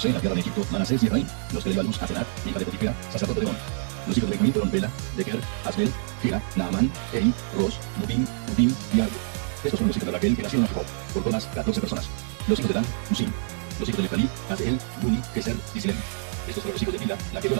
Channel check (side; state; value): left; silent; 61 dB below the other